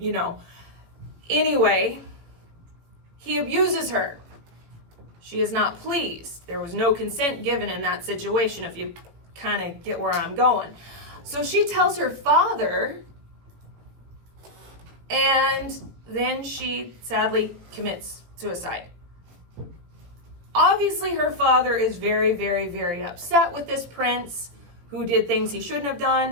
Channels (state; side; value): late; left; 18 ms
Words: know. Anyway, he abuses her. She is not pleased. There was no consent given in that situation, if you kind of get where I'm going. So she tells her father, and then she sadly commits suicide. Obviously, her father is very, very, very upset with this prince who did things he shouldn't have